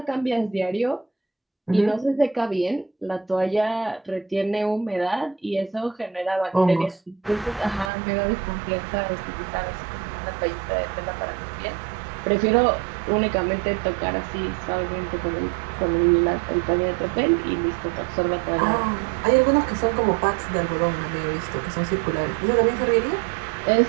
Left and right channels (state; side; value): drops out; left; at 7.9 s